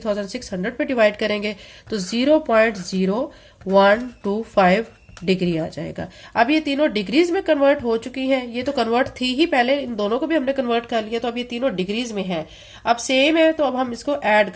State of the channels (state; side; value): identical; both; correlation 1.00